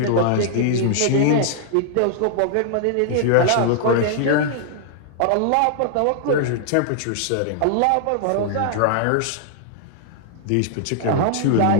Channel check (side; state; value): both; different; correlation -0.01